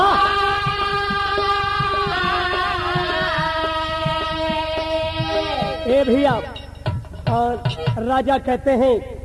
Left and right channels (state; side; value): identical; both; correlation 1.00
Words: ए भैया, और राजा कहते हैं,